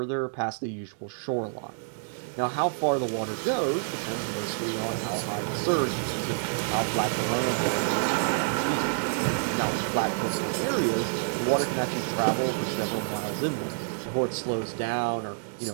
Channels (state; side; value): silent; left; digital silence